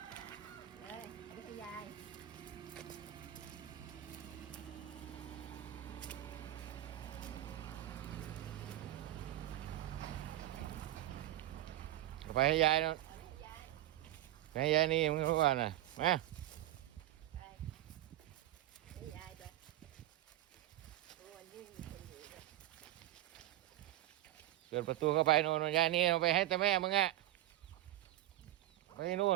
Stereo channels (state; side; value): quieter; left; 14.5 dB